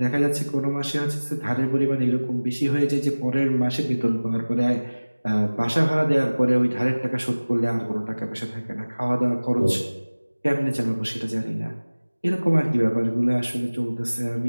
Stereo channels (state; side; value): inverted; both; correlation -1.00